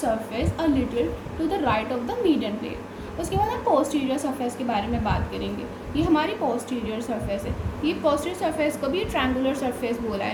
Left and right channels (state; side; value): identical; both; correlation 1.00